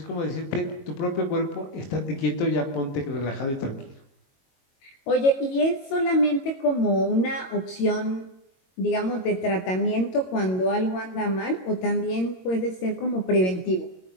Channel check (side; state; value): right; late; 22 ms